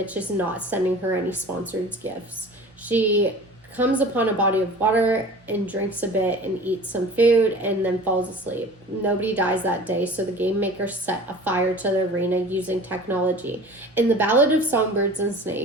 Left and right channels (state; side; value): normal; both; correlation 0.42